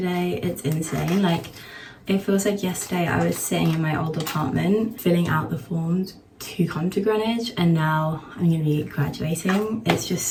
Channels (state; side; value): identical; both; correlation 1.00